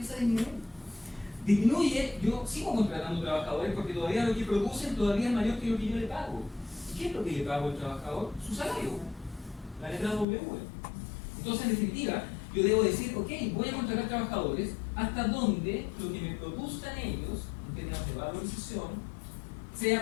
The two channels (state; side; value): drops out; right; at 10.2 s